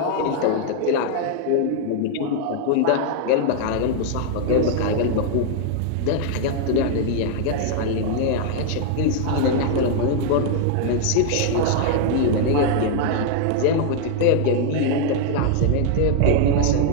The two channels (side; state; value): both; different; correlation 0.00